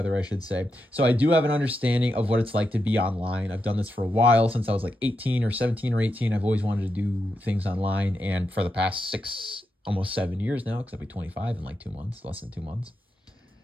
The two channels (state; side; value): normal; both; correlation 0.86